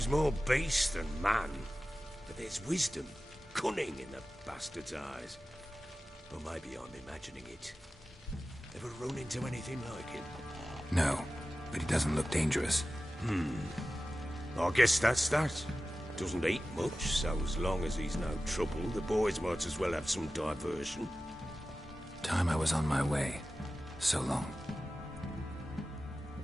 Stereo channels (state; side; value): normal; both; correlation 0.95